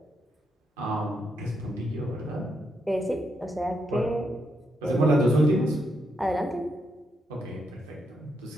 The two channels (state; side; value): normal; both; correlation 0.80